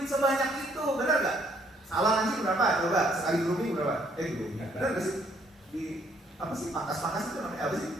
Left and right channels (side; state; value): both; normal; correlation 0.67